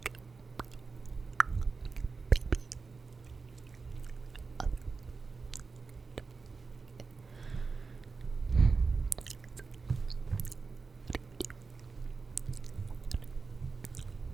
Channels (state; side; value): quieter; left; 4.5 dB